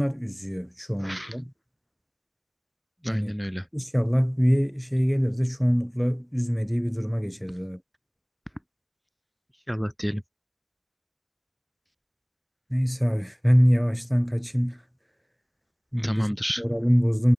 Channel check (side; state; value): both; identical; correlation 1.00